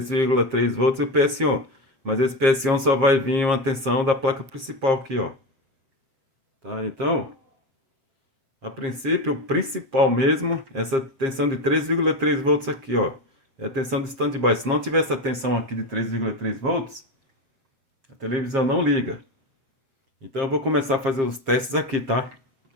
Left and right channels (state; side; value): late; left; 7.5 ms